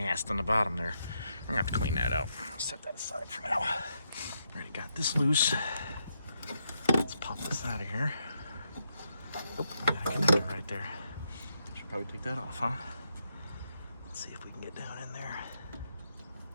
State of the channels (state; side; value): inverted; both; correlation -0.80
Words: on the bottom there. I'm gonna have to clean that out. I'll set that aside for now. Already got this loose. Let's pop this out of here. Oh, got a connector right there. Should probably take that off, huh? Let's see if we can get down in there